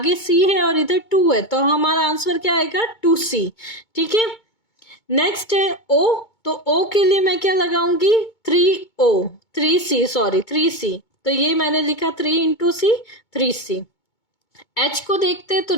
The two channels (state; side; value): late; right; 2.2 ms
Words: C है और इधर 2 है, तो हमारा आंसर क्या आएगा 2C। ठीक है, नेक्स्ट है O, तो O के लिए मैं क्या लगाऊंगी 3C, तो ये मैंने लिखा 3 इंटू C 3C। H को देखते हैं तो